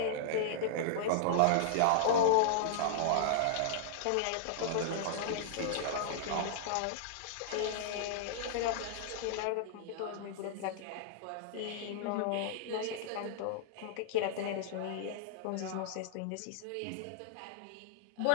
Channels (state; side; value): different; both; correlation -0.02